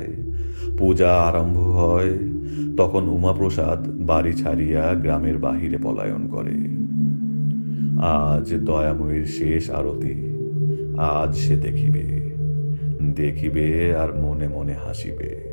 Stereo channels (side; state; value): both; inverted; correlation -1.00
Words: পূজা আরম্ভ হয়, তখন উমাপ্রসাদ বাড়ি ছাড়িয়া গ্রামের বাহিরে পলায়ন করে। আজ দয়াময়ীর শেষ আরতি, আজ সে দেখিবে, দেখিবে আর মনে মনে হাসিবে।